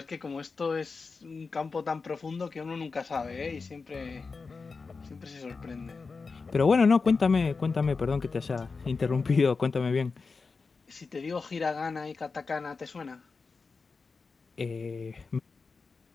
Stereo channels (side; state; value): right; quieter; 4.5 dB